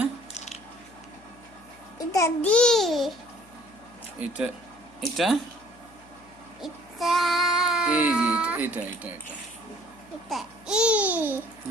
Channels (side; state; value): left; noise; hum, 27 dB below the sound